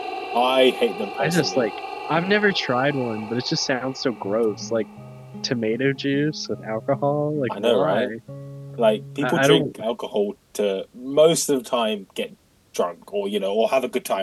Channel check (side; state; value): both; identical; correlation 1.00